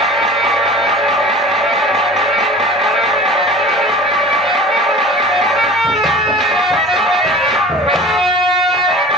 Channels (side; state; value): both; normal; correlation 0.40